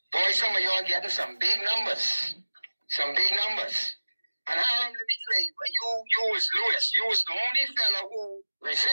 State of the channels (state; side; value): inverted; both; correlation -1.00